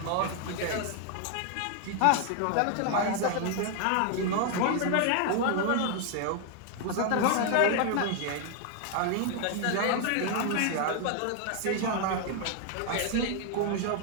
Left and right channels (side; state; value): both; different; correlation 0.00